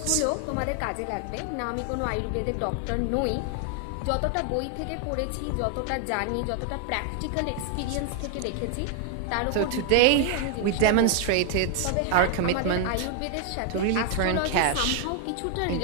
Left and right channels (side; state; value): both; different; correlation 0.00